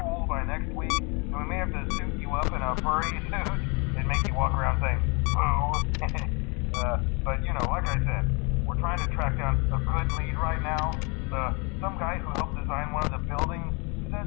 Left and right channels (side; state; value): right; quieter; 31.3 dB